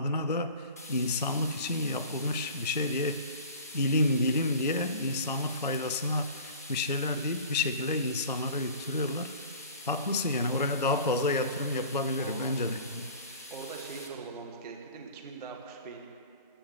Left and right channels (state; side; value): inverted; both; correlation -0.42